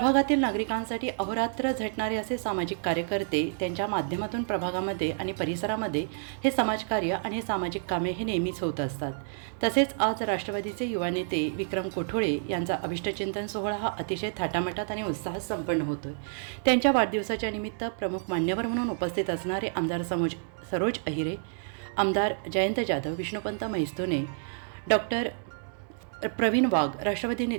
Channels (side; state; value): left; silent; digital silence